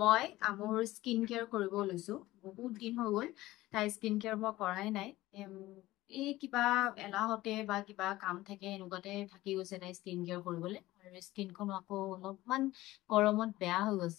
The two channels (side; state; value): right; quieter; 17.3 dB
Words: মই মোৰ স্কিন কেয়াৰ কৰিব লৈছো। বহুত দিন হৈ গ'ল তাই স্কিন কেয়াৰ মই কৰাই নাই। এই কিবা এলাহতে বা কিবা কাম থাকে এনেকুৱাতে থাকি গৈছে তাই স্কিন কেয়াৰ কৰিবলৈ, আৰু স্কিনখন আকৌ অলপমান গৰমত বেয়া হৈ